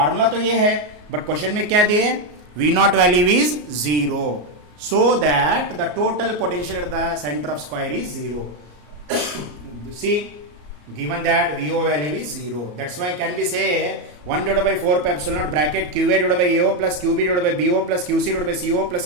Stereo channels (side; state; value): left; late; 33 ms